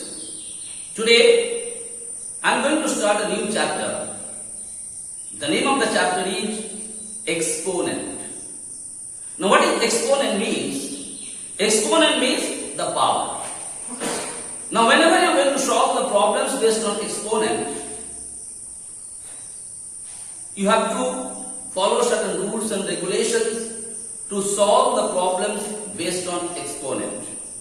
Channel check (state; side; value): identical; both; correlation 1.00